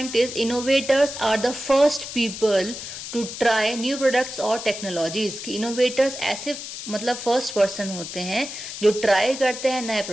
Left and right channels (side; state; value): left; noise; hiss, 9 dB below the sound